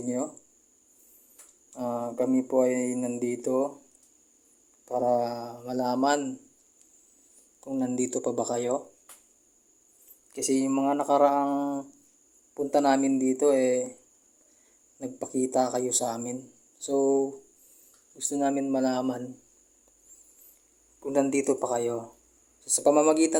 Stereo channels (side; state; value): both; identical; correlation 1.00